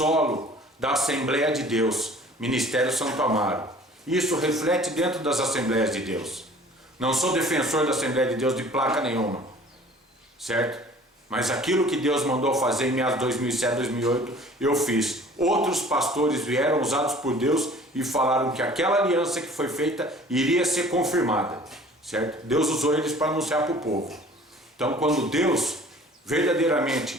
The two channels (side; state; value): both; normal; correlation 0.49